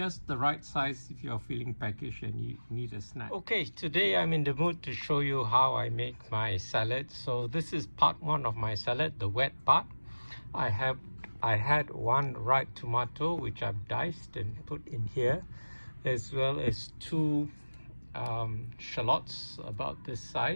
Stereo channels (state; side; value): inverted; both; correlation -1.00